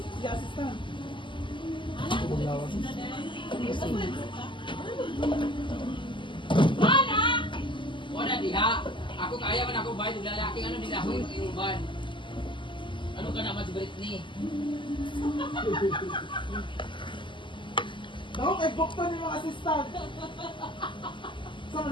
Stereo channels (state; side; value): late; right; 0.24 ms